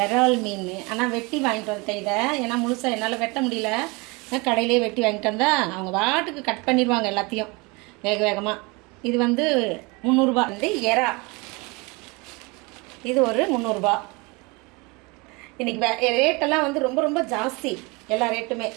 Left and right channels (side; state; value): left; quieter; 27.0 dB